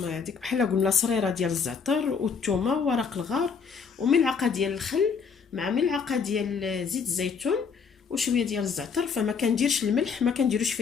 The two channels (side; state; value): right; quieter; 6.0 dB